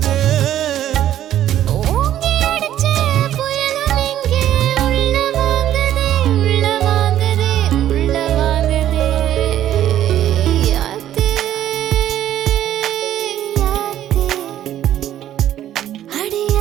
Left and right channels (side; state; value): left; quieter; 11.9 dB